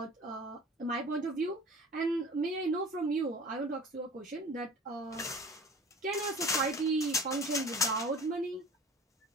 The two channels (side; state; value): both; normal; correlation 0.42